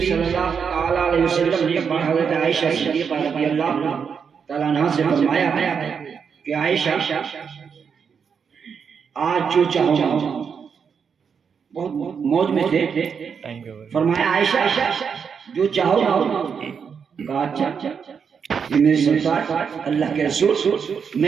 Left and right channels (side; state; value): left; quieter; 6.5 dB